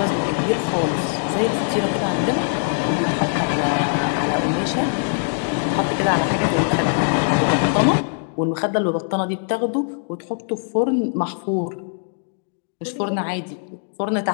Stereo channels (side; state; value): right; silent; digital silence